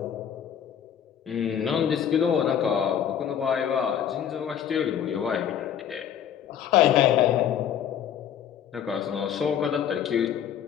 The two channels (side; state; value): right; quieter; 9.2 dB